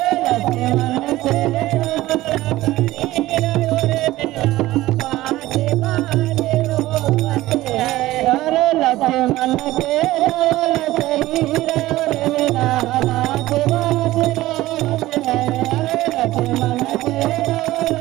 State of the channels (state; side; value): quieter; left; 16.8 dB